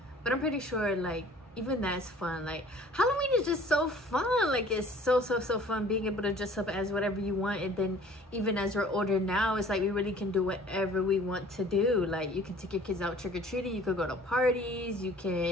but I'm pretty sure like even that's fun. Like Halloween is just so fun. Like it's so fun being able to dress up as whatever you want. And then even as we're older now, it's like we really can do whatever we want to do. Like you can take your kids out trick-or-treating, you could go to parties, you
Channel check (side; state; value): both; normal; correlation 0.51